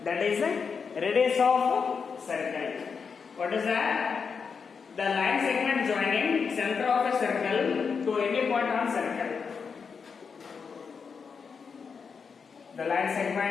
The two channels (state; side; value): quieter; right; 5.8 dB